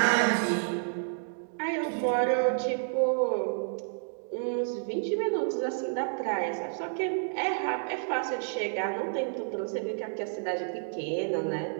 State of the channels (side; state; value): left; silent; digital silence